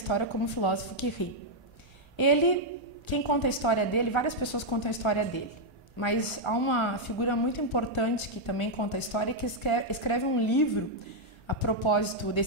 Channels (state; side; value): late; right; 1.3 ms